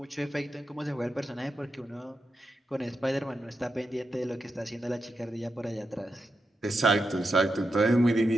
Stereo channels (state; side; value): normal; both; correlation 0.87